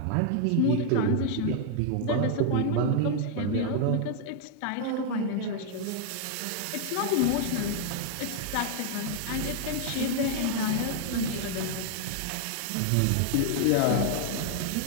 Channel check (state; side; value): different; both; correlation 0.00